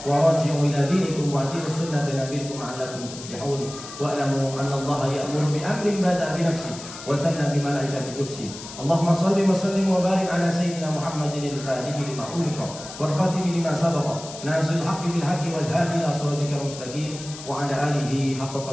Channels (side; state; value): left; noise; hiss, 13 dB below the sound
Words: wa raji'u ila dinikum wa ati'u sunnata nabiyikum la'allakum tuflihun wa alamu anna Allaha ya'muru bi amrin bada'a bi nafsihi wa thanna bi malaikati qudsi. Allahumma salli wa sallim wa barik ala sayyidina Muhammadin al-fatihi lima ughliqa wal khatimi lima sabaqa nasil haqqi bil haqqi wal hadi ila siratikal mustaqim wa ala alihi haqqa